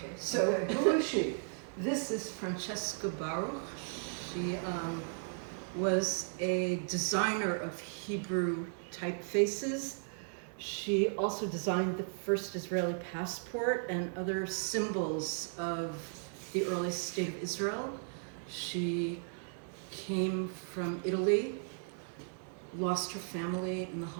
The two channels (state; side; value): silent; left; digital silence